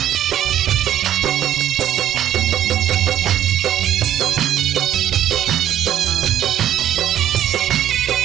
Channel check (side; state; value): left; quieter; 11.2 dB